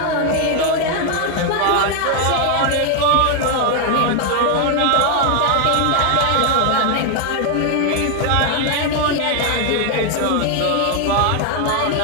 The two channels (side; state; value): both; different; correlation 0.01